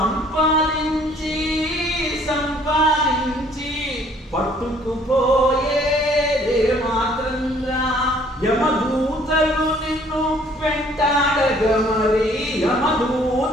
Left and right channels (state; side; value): normal; both; correlation 0.59